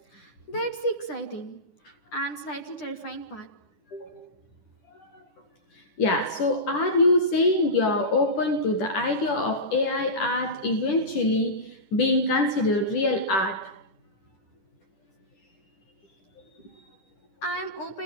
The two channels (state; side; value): late; right; 10 ms